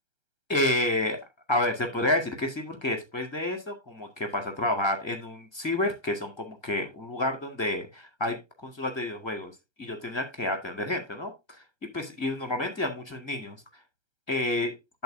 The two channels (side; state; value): right; late; 1.3 ms